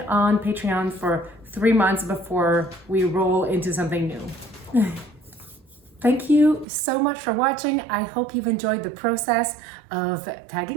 on Patreon for 3 months before we roll into something new. Thank you so much for watching. I hope you've enjoyed the process of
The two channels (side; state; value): left; drops out; at 6.7 s